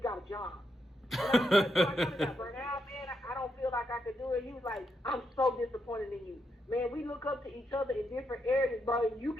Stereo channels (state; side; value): normal; both; correlation 0.81